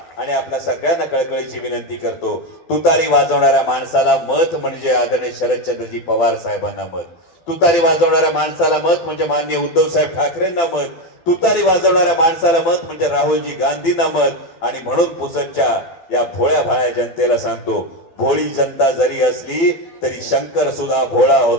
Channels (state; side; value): late; right; 12 ms